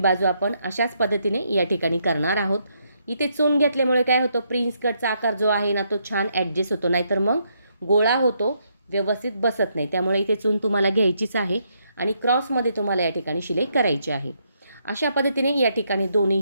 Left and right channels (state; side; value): inverted; both; correlation -0.75